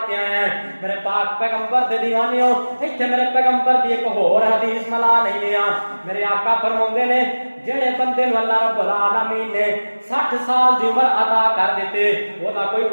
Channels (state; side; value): inverted; both; correlation -1.00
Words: کے آیا ہے میرے پاک پیغمبر دے دیوانیوں ایتھے میرے پیغمبر دی ایک اور حدیث ملا نہیں لیا میرے آقا فرماندے نے جڑے بندے نو اللہ رب العالمین نے 60 سال دی عمر عطا کر دیتے او دا کوئی